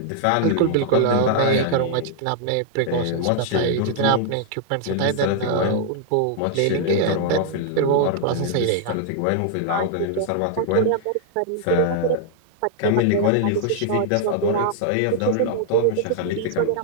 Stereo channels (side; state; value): both; different; correlation -0.01